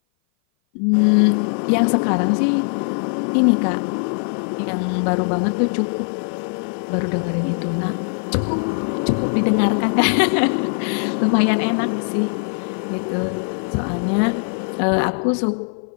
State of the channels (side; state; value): right; silent; 57 dB below the other